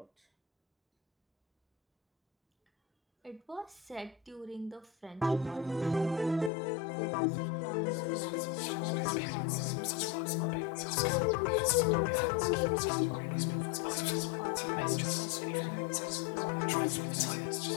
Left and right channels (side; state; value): right; drops out; at 6.5 s